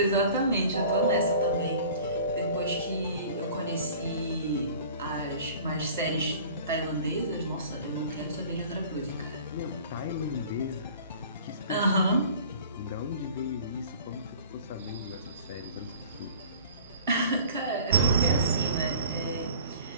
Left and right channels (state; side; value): inverted; both; correlation -0.46